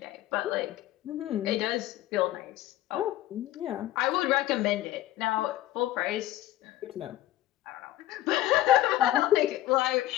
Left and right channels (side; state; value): right; quieter; 14.5 dB